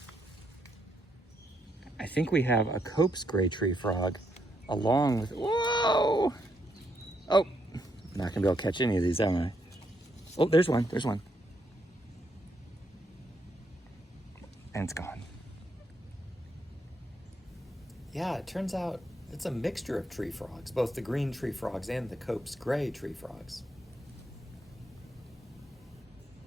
I think we have a Cope's gray tree frog along with, whoa! Oh, I'm not gonna be able to catch any of these, am I? Oh, there's one. And it's gone. Yeah, it turns out it's a mixture of tree frogs, both the green tree frogs and the Cope's gray tree frogs.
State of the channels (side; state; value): both; normal; correlation 0.77